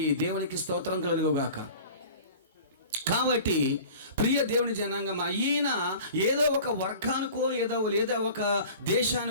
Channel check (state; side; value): inverted; both; correlation -0.42